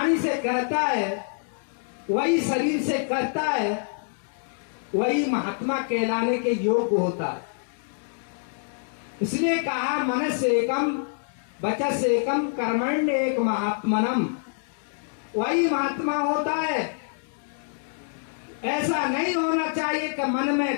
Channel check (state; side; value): silent; right; 61 dB below the other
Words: से कहता है, वही शरीर से करता है, वही महात्मा कहलाने के योग्य होता है। इसलिए कहा मन से कम बचत से कम कर्मण्य एक महात्मनम। वही महात्मा होता है। ऐसा नहीं होना चाहिए कि मन